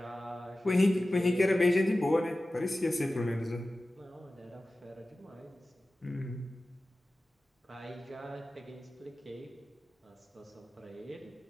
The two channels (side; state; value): both; normal; correlation 0.96